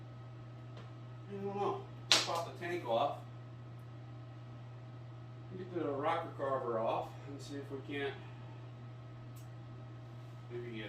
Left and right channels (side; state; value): both; identical; correlation 1.00